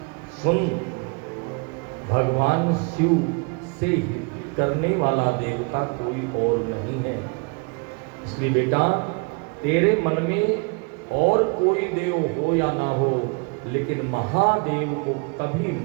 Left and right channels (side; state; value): left; quieter; 33.3 dB